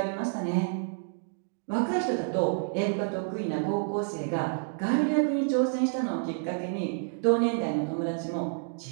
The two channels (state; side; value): silent; left; digital silence